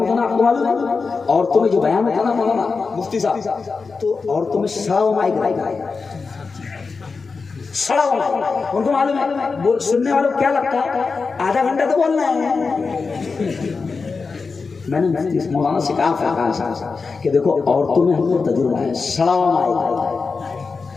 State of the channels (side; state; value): right; quieter; 4.6 dB